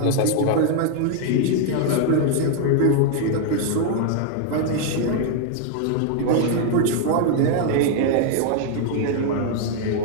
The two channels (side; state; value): both; different; correlation 0.00